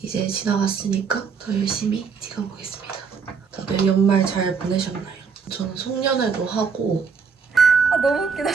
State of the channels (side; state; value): left; quieter; 5.8 dB